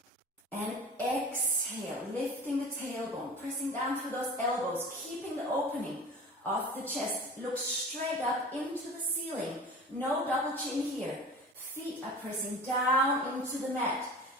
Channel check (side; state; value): both; normal; correlation 0.38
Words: And exhale, lifting the tailbone, pressing down through those elbows, keeping the opening of the chest. Look straight up into the ceiling. No double chin here. Feet are pressing down into the mat.